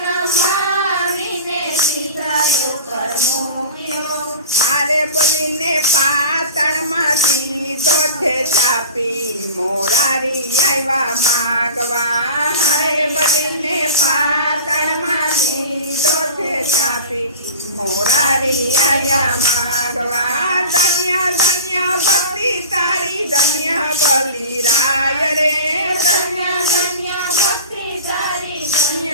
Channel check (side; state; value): both; inverted; correlation -0.36